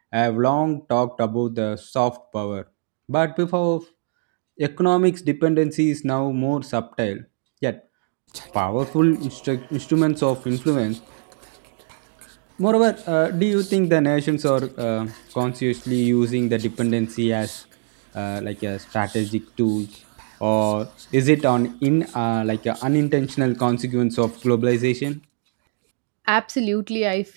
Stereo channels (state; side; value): silent; left; digital silence